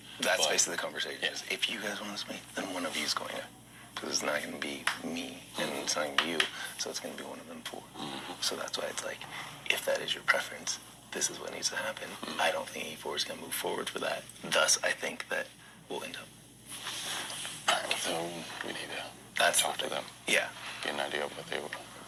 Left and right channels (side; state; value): both; identical; correlation 1.00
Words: That's basically the conversation. Yeah. Is if you guys want to meet, then one of you is going to. Because it's not going to be me, and it's not going to be you, so it's going to be one of them 4. So that's why it's like, if that is your preference, this is what needs to happen. I don't think E4 is going to move forward for that. Thus, I think that we'll end up. All right, so we need to talk to them. Yeah. Get an idea of what they were doing.